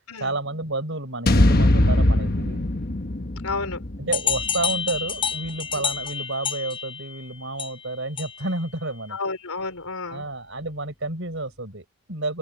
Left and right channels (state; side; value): normal; both; correlation 0.45